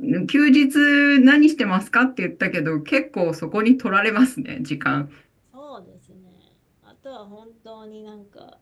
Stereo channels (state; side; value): identical; both; correlation 1.00